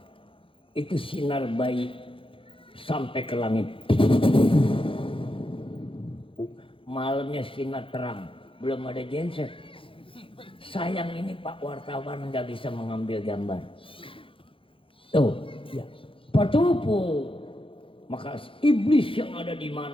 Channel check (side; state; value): right; late; 0.26 ms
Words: itu sinar bayi sampai ke langit. Malamnya sinar terang, belum ada genset. Sayang ini Pak wartawan nggak bisa mengambil gambar. Tuh, ya. Patupu. Maka iblis yang ada di